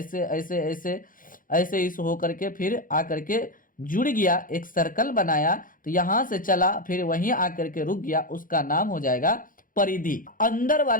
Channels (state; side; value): late; right; 0.40 ms